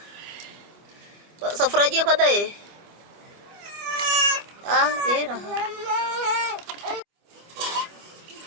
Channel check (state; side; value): late; left; 25 ms